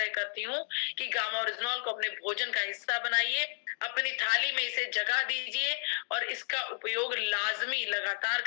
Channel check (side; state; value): right; silent; digital silence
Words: करती हूँ कि गामा ओरिजिनॉल को अपने भोजन का हिस्सा बनाइए, अपनी थाली में इसे जगह दीजिए और इसका उपयोग लाजमी लगातार